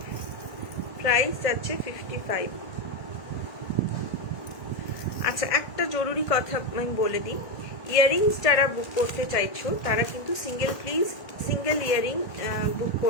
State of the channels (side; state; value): right; late; 1.7 ms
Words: প্রাইস যাচ্ছে 55। আচ্ছা, একটা জরুরি কথা আমি বলে দিই, ইয়াররিংস যারা বুক করতে চাইছো তারা কিন্তু সিঙ্গেল ইয়াররিং বুক